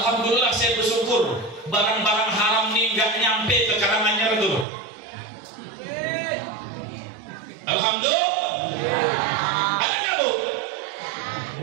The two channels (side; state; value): left; drops out; at 4.7 s